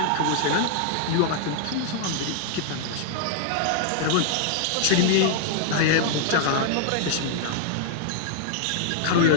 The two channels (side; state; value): both; different; correlation 0.00